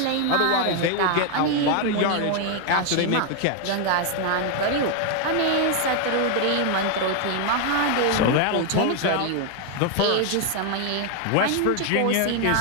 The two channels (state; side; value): different; both; correlation 0.01